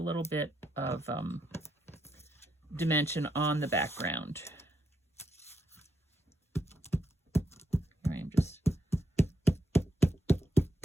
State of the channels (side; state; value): both; normal; correlation 0.80